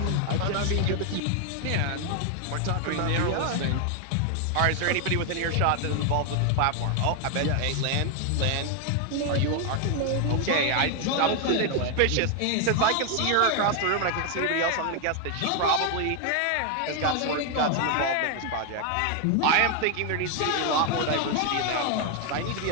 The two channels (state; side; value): different; both; correlation 0.00